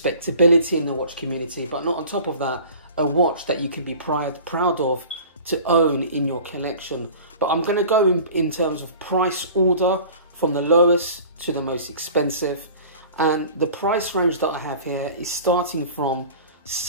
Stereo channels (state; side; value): inverted; both; correlation -0.42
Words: in the watch community, but not on top of that, a watch that you can be proud of to own in your collection. But I'm going to go in terms of price order from the lowest to the most expensive. And the price range that I have here is starting from